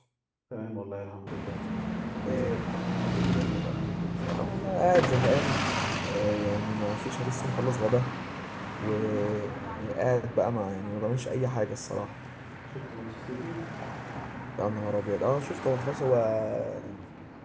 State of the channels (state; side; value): identical; both; correlation 1.00